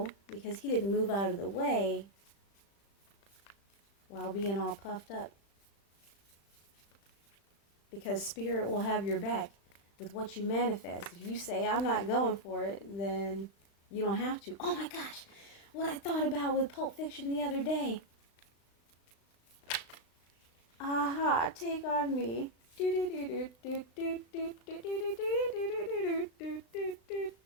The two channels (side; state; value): right; late; 35 ms